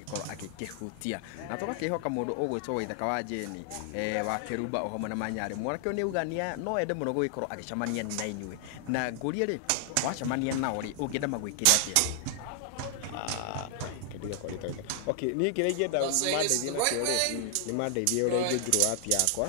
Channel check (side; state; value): both; different; correlation 0.00